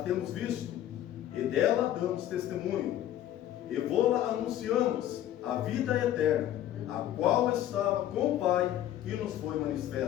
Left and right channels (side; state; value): right; quieter; 12.2 dB